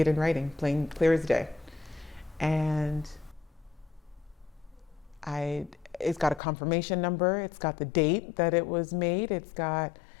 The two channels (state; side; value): drops out; right; at 6.4 s